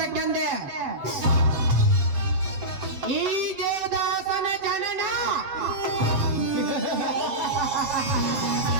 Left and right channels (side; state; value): left; late; 7.5 ms